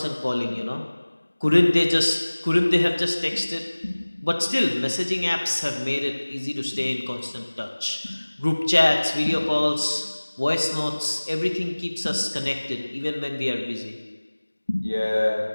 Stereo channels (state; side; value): inverted; both; correlation -1.00